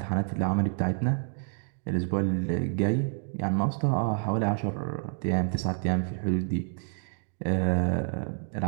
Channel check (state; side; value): silent; left; 56 dB below the other